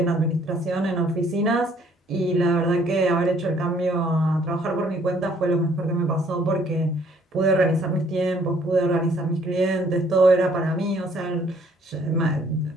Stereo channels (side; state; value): both; normal; correlation 0.62